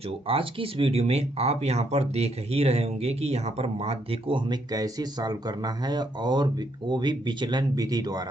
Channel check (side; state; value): both; normal; correlation 0.74